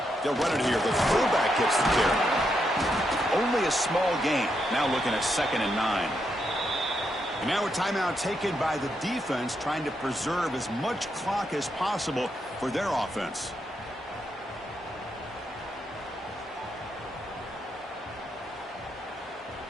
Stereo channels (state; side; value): normal; both; correlation 0.81